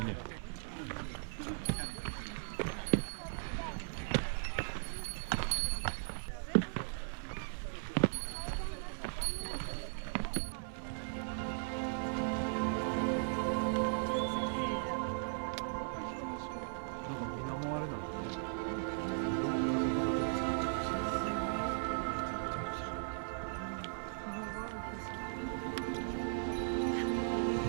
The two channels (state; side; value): silent; left; 53 dB below the other